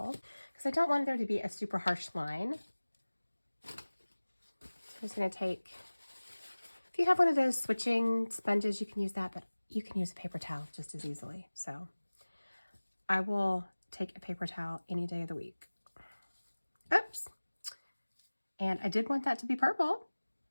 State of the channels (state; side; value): inverted; both; correlation -1.00